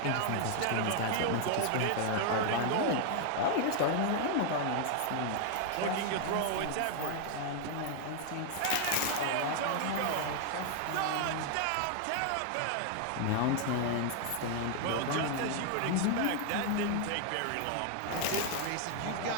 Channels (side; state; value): both; different; correlation 0.00